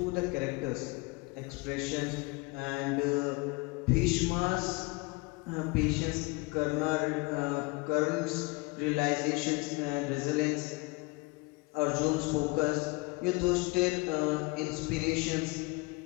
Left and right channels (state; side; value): quieter; right; 26.5 dB